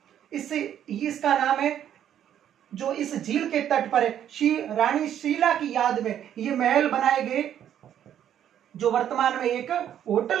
इसका नाम है, जो इस झील के तट पर है, रानी शीला की याद में ये महल बनाए गए, जो वर्तमान में एक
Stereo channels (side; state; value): left; quieter; 10.2 dB